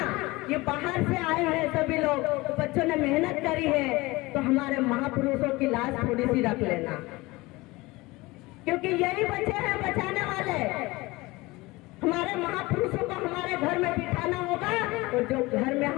ये बाहर से आए हैं सभी लोग, तो बच्चों ने मेहनत करी है, तो हमारे महापुरुषों की लाश थोड़ी सी रख लेना, क्योंकि यही बच्चे हैं बचाने वाले। हमारे महापुरुषों को हमारे घर में बिठाना होगा और जो घर में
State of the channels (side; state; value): right; quieter; 21.7 dB